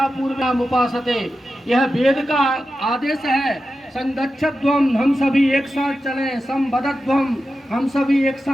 पूर्व्याम उपासते। यह वेद का आदेश है। संगच्छध्वम हम सभी एक साथ चलें, संभरध्वम हम सभी एक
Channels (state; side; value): normal; both; correlation 0.91